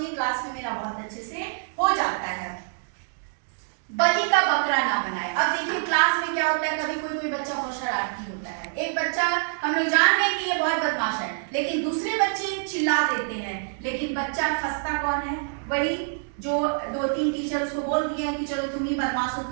नहीं, क्लास में मेरा बहुत अच्छे से हो जाता है। बलि का बकरा ना बनाए। अब देखिए क्लास में क्या होता है, कभी कोई बच्चा बहुत शरारती होता है, एक बच्चा हम लोग जान रहे हैं कि ये बहुत बदमाश है, लेकिन दूसरे बच्चे चिल्ला देते हैं, लेकिन बच्चा फंसता कौन है? वही जो 2-3 टीचर उसको बोल दिए हैं कि चलो तुम ही बदमाश हो,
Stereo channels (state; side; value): silent; left; digital silence